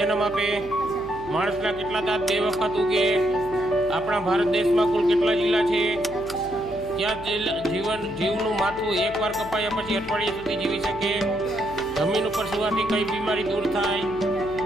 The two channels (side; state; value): left; noise; hum, 17 dB below the sound